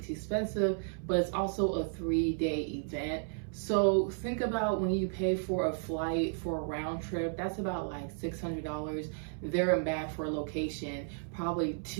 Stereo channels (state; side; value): silent; left; 56 dB below the other